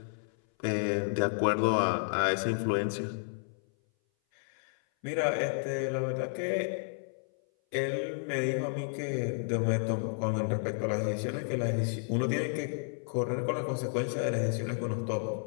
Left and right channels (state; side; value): silent; right; 57 dB below the other